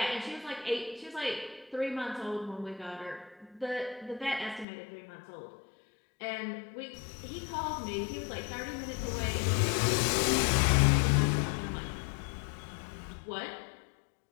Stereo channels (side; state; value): right; drops out; at 4.7 s